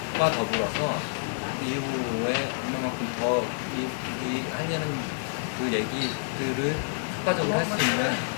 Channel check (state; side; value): silent; right; digital silence